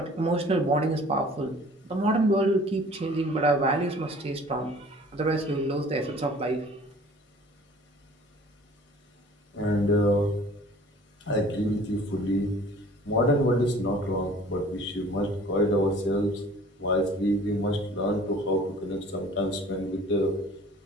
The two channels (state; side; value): normal; both; correlation 0.49